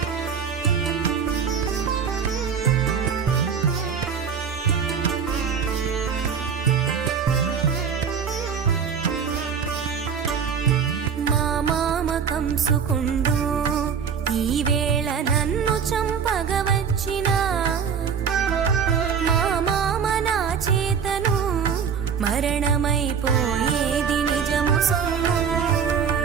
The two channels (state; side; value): quieter; left; 6.9 dB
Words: మా మామ కంసుకుండు ఈ వేళ నన్ను చంపగవచ్చిన మా మామ నా చేతను మరణమైపోయేది నిజము సొమ్ము.